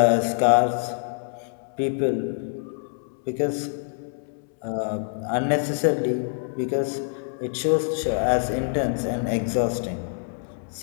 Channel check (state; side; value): silent; right; digital silence